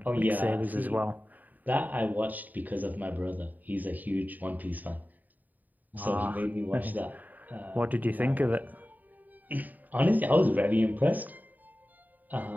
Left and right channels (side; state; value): left; late; 0.084 ms